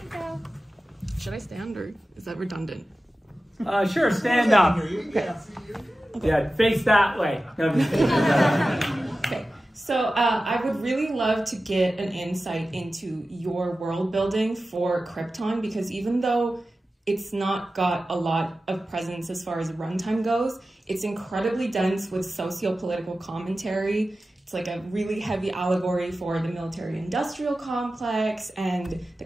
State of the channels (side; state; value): both; normal; correlation 0.94